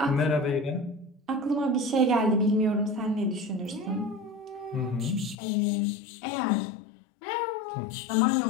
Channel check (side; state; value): right; drops out; at 5.4 s